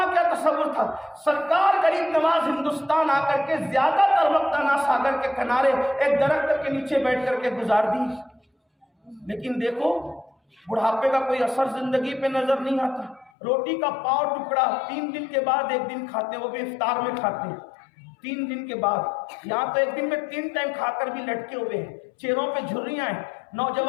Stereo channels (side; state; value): right; drops out; at 13.3 s